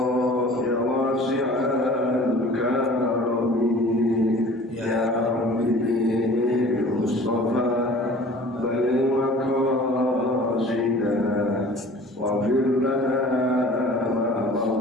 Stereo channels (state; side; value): normal; both; correlation 0.46